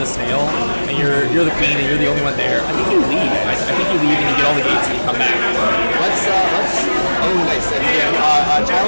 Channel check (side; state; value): both; inverted; correlation -1.00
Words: the snail and you're the queen and you're the only one there, I think you leave. I think you leave and you get all the gates and you come back. Let's nice.